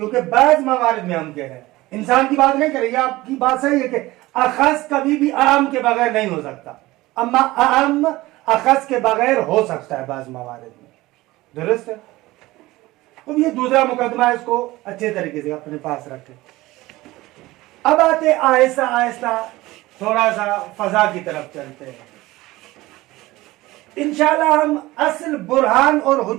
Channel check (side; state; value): left; quieter; 18.9 dB